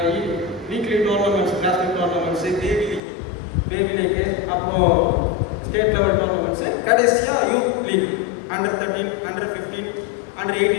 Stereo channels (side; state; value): right; drops out; at 3.0 s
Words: weekly tournaments, classmate tournaments, baby league, அப்புறம் ஸ்டேட் லெவல் டோர்னமெண்ட்ஸு, கடைசியாக youth league under 13, under 15, under